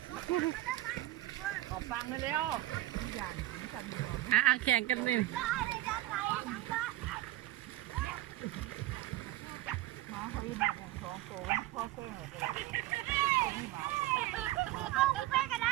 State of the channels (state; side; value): quieter; left; 16.2 dB